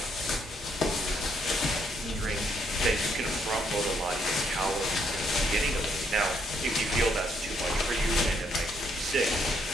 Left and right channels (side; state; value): both; normal; correlation 0.72